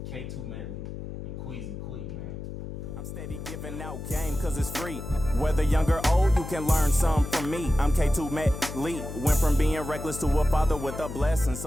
K2 Medley, and Queasy Quee, man. I'm steady giving out game cause it's free. Whether young or old, you can learn some from me. I'm K2 Medley. Went from being reckless to a father with a blessing,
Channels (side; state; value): left; noise; hum, 8 dB below the sound